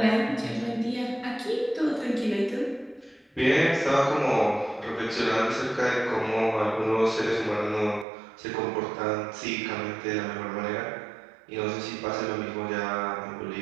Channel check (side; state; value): left; drops out; at 8.1 s